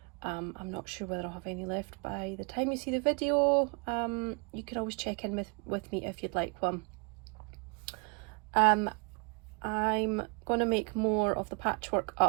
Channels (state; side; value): quieter; left; 34.5 dB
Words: I'm not sure whether I'll have any left by the time you see the video. You can always check in with me if you'd like one. I'm going to make more of the patchwork